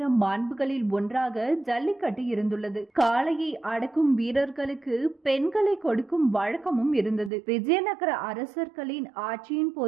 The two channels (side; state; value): left; drops out; at 7.3 s